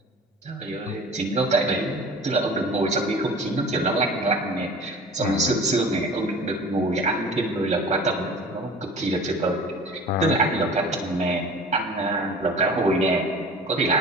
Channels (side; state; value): both; normal; correlation 0.41